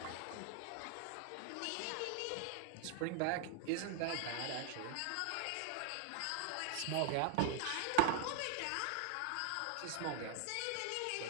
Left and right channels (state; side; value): different; both; correlation 0.00